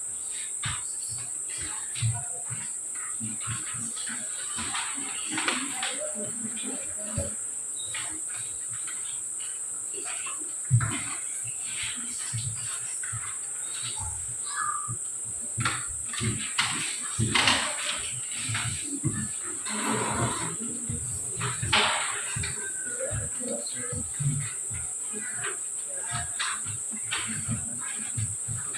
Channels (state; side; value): identical; both; correlation 1.00